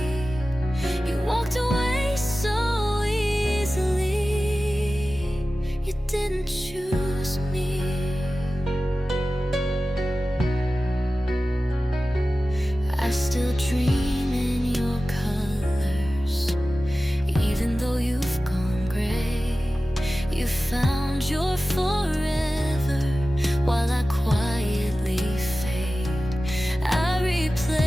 You walked away so easily. You didn't choose me. I still dream in your colors, even though you've gone gray. You found your forever while I quietly fade. I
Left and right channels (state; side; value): normal; both; correlation 0.95